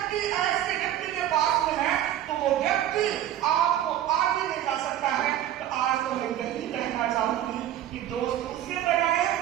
ऐसे व्यक्ति के पास में है तो वो व्यक्ति आपको आगे ले जा सकता है। तो आज तो मैं यही कहना चाहूंगी कि दोस्त उसे बनाए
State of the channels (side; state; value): left; quieter; 11.8 dB